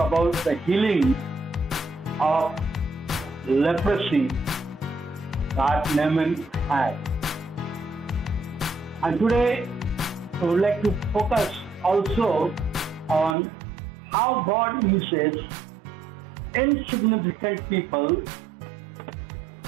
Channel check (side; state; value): left; drops out; at 13.4 s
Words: the healing of leprosy that Naaman had. And today I would like to focus also on how God uses insignificant people